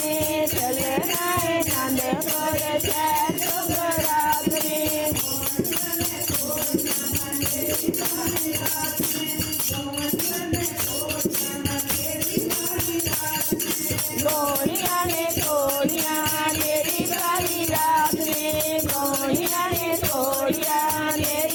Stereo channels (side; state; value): both; identical; correlation 1.00